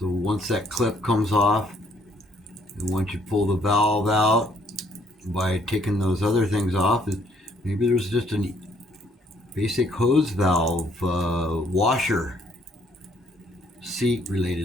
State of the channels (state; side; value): normal; both; correlation 0.65